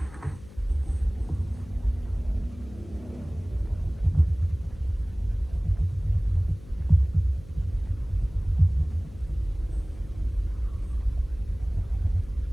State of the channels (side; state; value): left; noise; hum, 19 dB below the sound